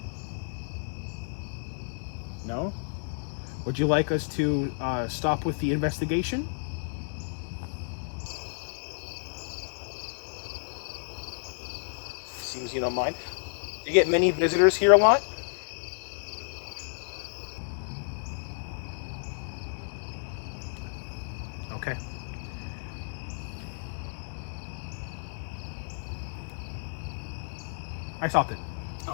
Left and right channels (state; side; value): silent; right; digital silence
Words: No? Would you like us to stop with the investigation? Seems you don't mind. Do you get many visitors here a lot? Okay. I stopped it. Oh,